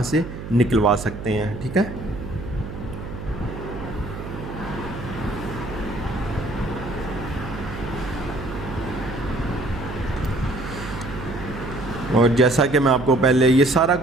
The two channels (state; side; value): noise; right; hum, 9 dB below the sound